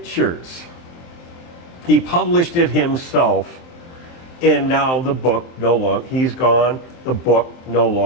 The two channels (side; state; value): right; late; 23 ms